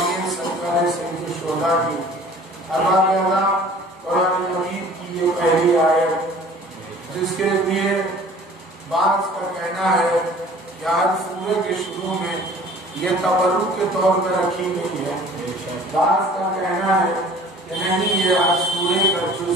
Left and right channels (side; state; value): both; normal; correlation 0.49